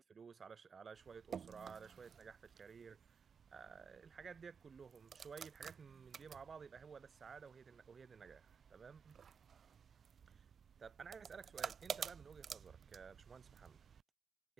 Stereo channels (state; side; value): quieter; left; 6.5 dB